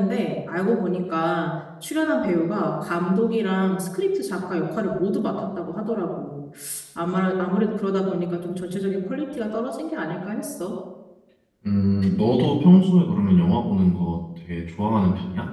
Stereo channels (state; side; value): identical; both; correlation 1.00